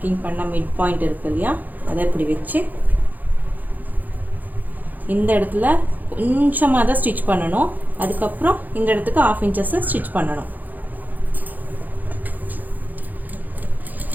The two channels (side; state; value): left; late; 0.083 ms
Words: பண்ண மிட் பாயிண்ட் இருக்கு இல்லையா, அதை இப்படி வச்சு இந்த இடத்துல கொஞ்சமாக தான் ஸ்டிச் பண்ணணும். அதுக்கப்புறம் இந்த இடத்துக்கு 1/2 இன்ச்சஸ் ஸ்டிச் பண்ணணும்.